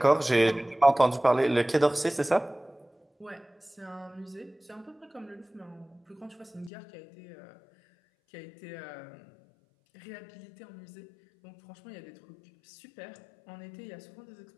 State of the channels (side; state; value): right; drops out; at 6.7 s